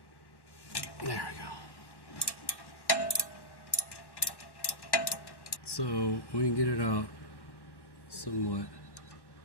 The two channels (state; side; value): late; right; 1.1 ms